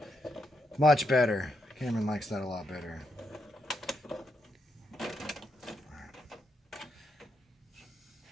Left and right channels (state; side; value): normal; both; correlation 0.80